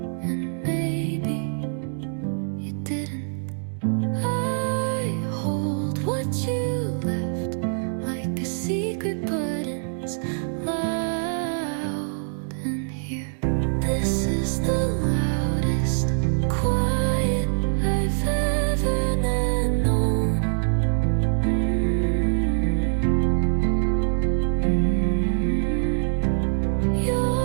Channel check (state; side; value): silent; left; digital silence